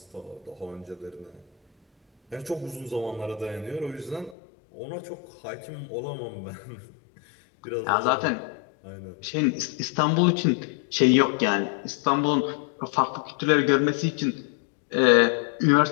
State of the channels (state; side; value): drops out; right; at 4.4 s